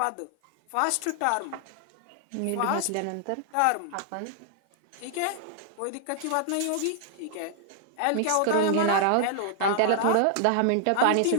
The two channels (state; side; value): different; both; correlation 0.00